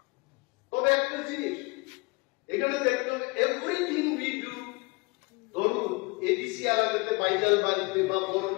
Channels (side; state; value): right; quieter; 27.7 dB